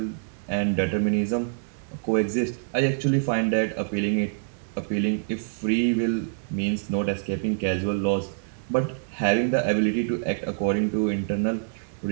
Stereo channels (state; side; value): silent; left; digital silence